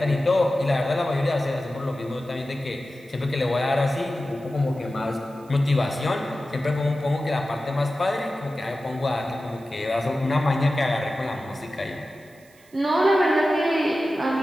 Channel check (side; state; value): right; noise; hiss, 29 dB below the sound